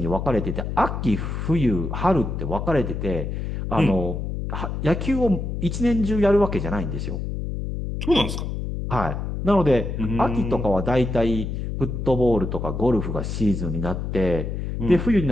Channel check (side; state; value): left; noise; hum, 4 dB below the sound